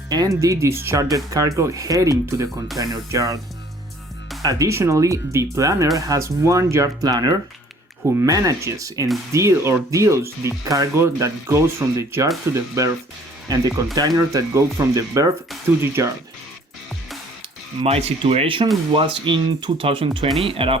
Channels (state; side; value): normal; both; correlation 0.56